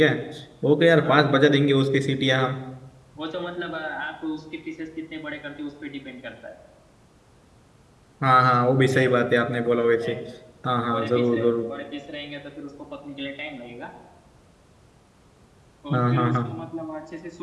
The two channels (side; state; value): both; identical; correlation 1.00